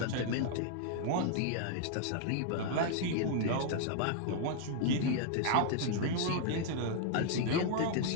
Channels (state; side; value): different; both; correlation -0.01